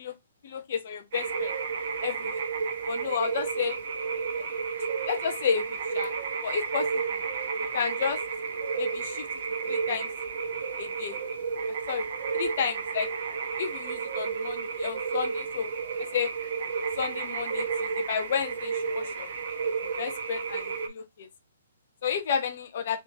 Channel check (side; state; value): both; inverted; correlation -0.64